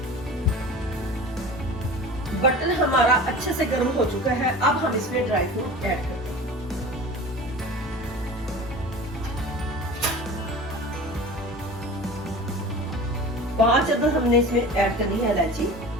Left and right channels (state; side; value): normal; both; correlation 0.37